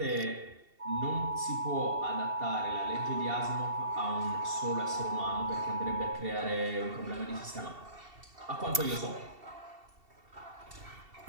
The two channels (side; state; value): left; late; 2.7 ms